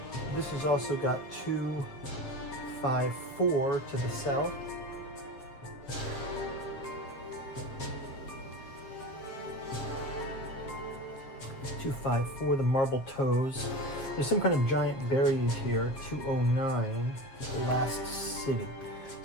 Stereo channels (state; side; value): late; right; 7.5 ms